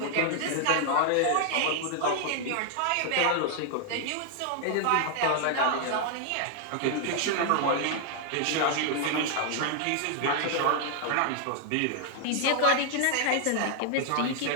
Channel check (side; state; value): both; different; correlation 0.00